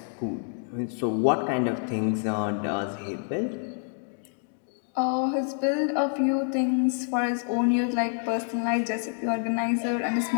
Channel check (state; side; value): silent; right; 60 dB below the other